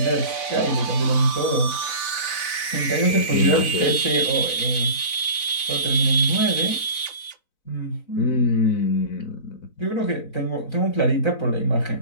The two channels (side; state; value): right; late; 4.0 ms